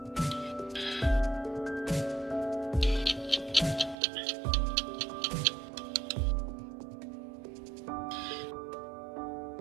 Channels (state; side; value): drops out; left; at 4.0 s